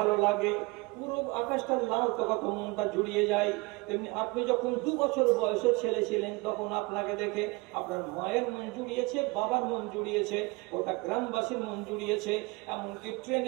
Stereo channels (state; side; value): quieter; left; 25.1 dB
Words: লাগে, পুরো আকাশটা লাল তো কত মনটা জুড়িয়ে যায়। তেমনি আপনি যখন 2 বছর বয়সের ছেলে ছিলেন তখন আপনাকে দেখে আপনার মায়ের মন জুড়িয়েছে, বাবার মন জুড়িয়েছে, ওটা গ্রামবাসীর মন জুড়িয়েছে। এমনকি